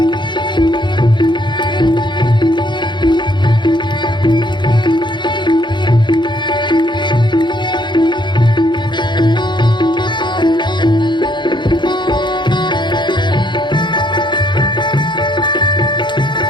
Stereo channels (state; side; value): late; right; 0.22 ms